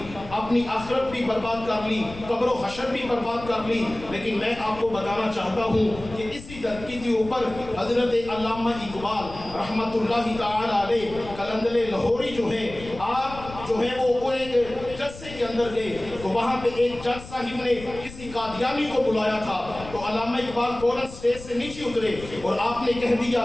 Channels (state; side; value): noise; left; rumble, 15 dB below the sound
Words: اپنی آخرت بھی برباد کر لی، قبر و حشر بھی برباد کر لی، لیکن میں آپ کو بتانا چاہتا ہوں کہ اسی دھرتی کے اوپر حضرت علامہ اقبال رحمت اللہ تعالی علیہ قلندر لاہوری جو ہیں، آپ جو ہے وہ ایک جلسے کے اندر گئے تو وہاں پہ ایک جج صاحب نے کسی قادیانی کو بلایا تھا، تو علامہ اقبال فوراً اسٹیج سے نیچے اترے اور آپ نے کہہ دیا